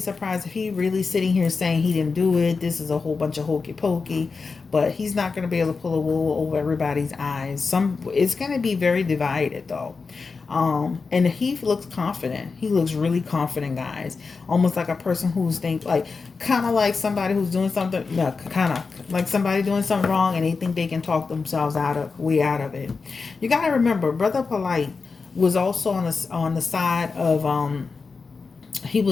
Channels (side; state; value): right; quieter; 4.6 dB